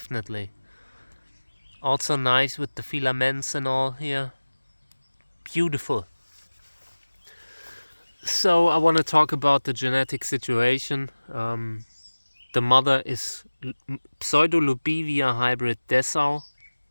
Also nice with the filaments and all here. Beautiful. So I want to talk about the genetic situation. The mother is Pseudolubivia hybrid DESSAU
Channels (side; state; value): both; inverted; correlation -1.00